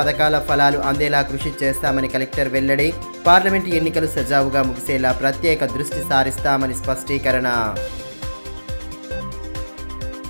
ఫలాలు అందేలా కృషి చేస్తామని కలెక్టర్ వెల్లడి. పార్లమెంటు ఎన్నికలు సజావుగా ముగిసేలా ప్రత్యేక దృష్టి సారిస్తామని స్పష్టీకరణ.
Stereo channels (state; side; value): inverted; both; correlation -1.00